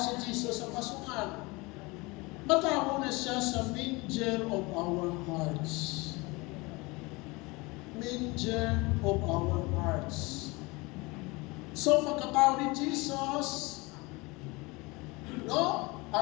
Jesus sa pasungan. Matawa na siya sa manger of our hearts. Manger of our hearts. So, pagkatawa ni Jesus, no?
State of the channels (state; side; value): quieter; right; 24.8 dB